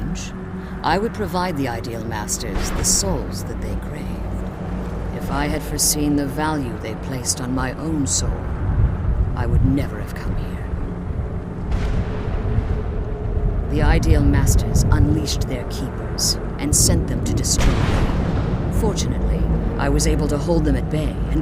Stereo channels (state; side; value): identical; both; correlation 1.00